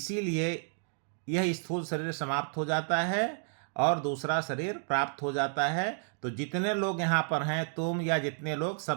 यह स्थूल शरीर समाप्त हो जाता है और दूसरा शरीर प्राप्त हो जाता है। तो जितने लोग यहाँ पर हैं, तुम या जितने लोग,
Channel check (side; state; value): left; silent; 57 dB below the other